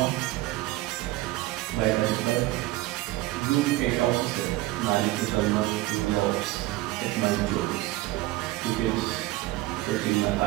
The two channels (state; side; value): quieter; left; 18.2 dB